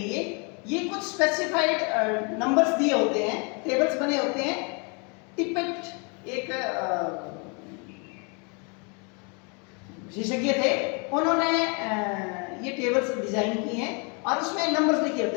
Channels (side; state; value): right; quieter; 34.0 dB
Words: ये कुछ स्पेसिफाइड नंबर्स दिए होते हैं, टेबल्स बने होते हैं। टिपेट एक विशेषज्ञ थे, उन्होंने ये टेबल्स डिजाइन की हैं और उसमें नंबर्स लिखे होते